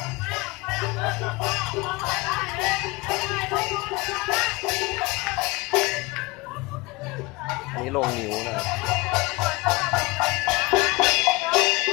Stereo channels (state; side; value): quieter; right; 23.9 dB